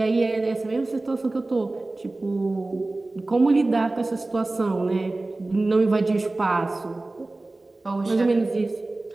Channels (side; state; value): left; quieter; 3.0 dB